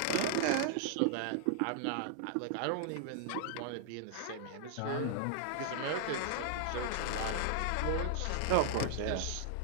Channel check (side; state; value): both; different; correlation -0.01